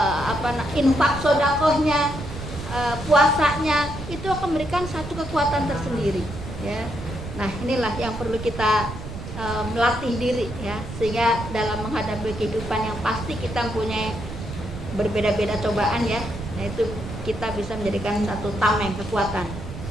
infak sodakohnya, puasanya, itu akan memberikan satu kekuatan tersendiri ya. Nah inilah yang perlu kita melatih diri ya, sehingga dalam menghadapi kehidupan yang pasti kita mempunyai berbeda-beda cobaan ya, nah itu kita bisa menjadikan satu tameng kekuatan.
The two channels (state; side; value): noise; right; rumble, 9 dB below the sound